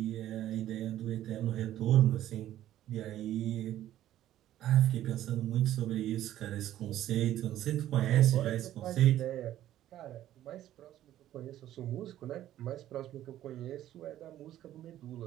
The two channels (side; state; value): left; quieter; 12.8 dB